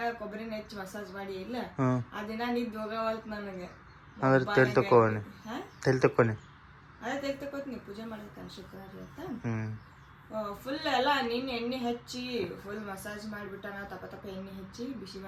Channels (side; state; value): both; identical; correlation 1.00